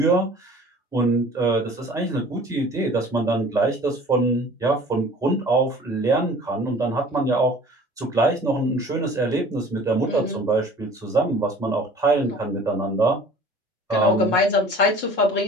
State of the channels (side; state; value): both; normal; correlation 0.47